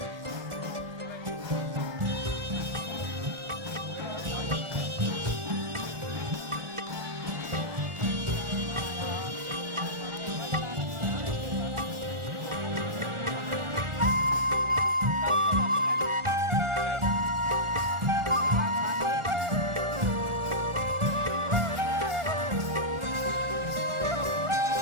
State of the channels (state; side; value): late; left; 1.4 ms